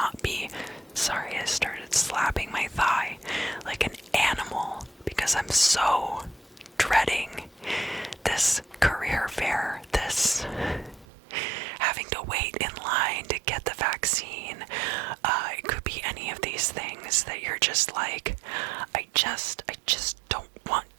be, sorry, I started slapping my thigh like an animal because I'm so dreading this career fair, this having to wait in line to get the vaccine. It could be any of these things that you're just like, I just don't want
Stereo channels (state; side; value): drops out; left; at 11.1 s